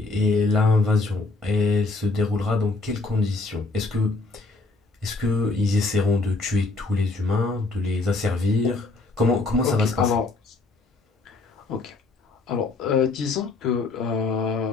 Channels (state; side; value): quieter; right; 3.5 dB